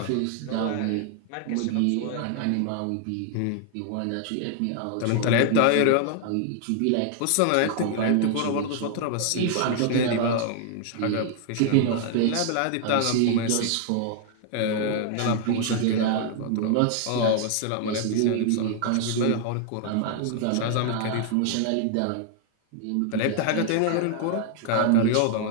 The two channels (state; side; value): different; both; correlation 0.00